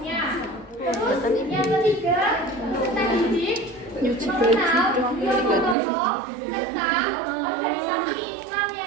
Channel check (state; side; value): drops out; left; at 5.8 s